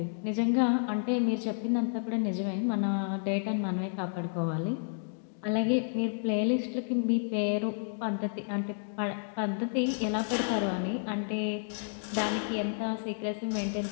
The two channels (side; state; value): right; silent; digital silence